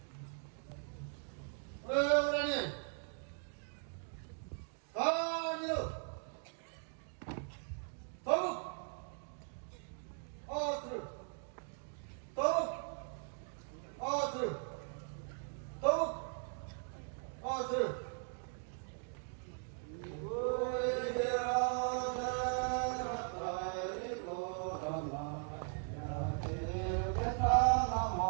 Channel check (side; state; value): left; silent; 52 dB below the other